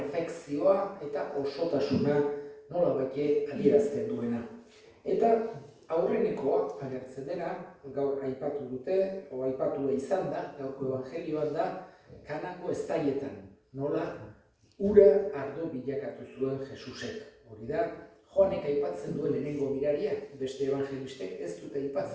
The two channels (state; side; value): identical; both; correlation 1.00